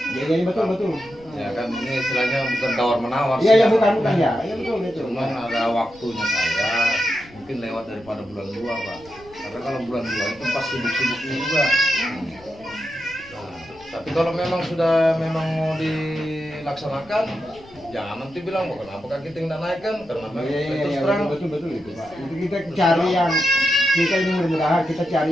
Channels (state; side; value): noise; left; rumble, 25 dB below the sound